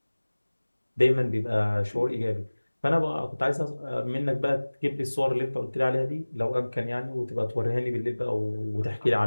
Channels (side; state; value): both; inverted; correlation -1.00